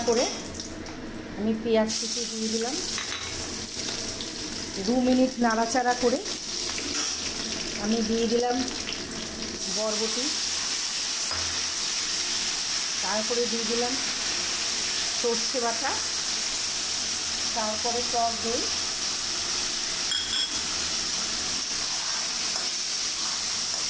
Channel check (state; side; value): identical; both; correlation 1.00